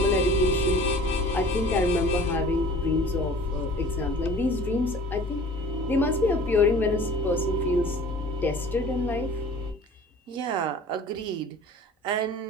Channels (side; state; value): both; normal; correlation 0.45